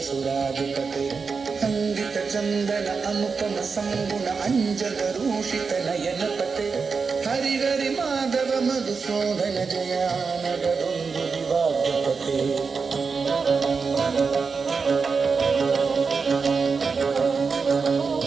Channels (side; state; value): left; quieter; 5.1 dB